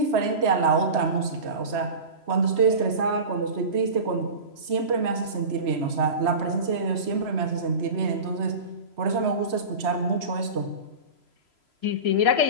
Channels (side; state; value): left; late; 3.0 ms